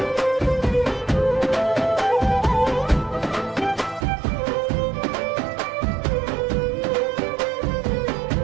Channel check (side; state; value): left; drops out; at 4.0 s